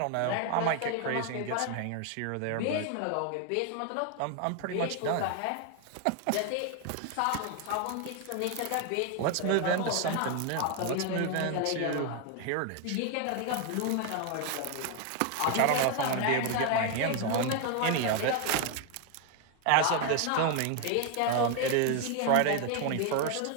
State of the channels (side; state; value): both; different; correlation 0.01